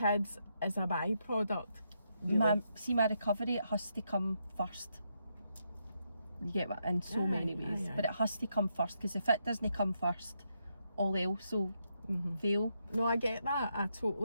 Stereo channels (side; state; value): both; inverted; correlation -0.80